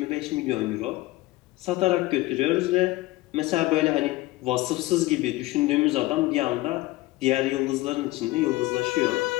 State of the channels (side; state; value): right; quieter; 19.3 dB